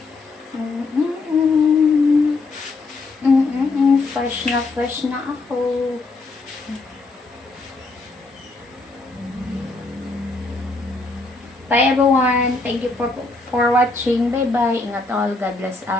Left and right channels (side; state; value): right; quieter; 3.5 dB